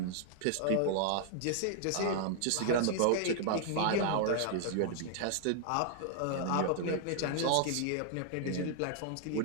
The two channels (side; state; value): both; different; correlation -0.01